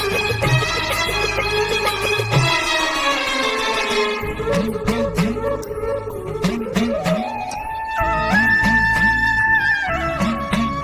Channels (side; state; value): both; identical; correlation 1.00